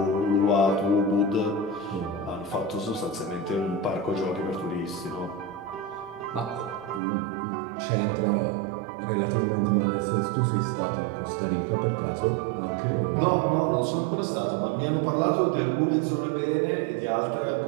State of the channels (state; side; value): drops out; left; at 7.0 s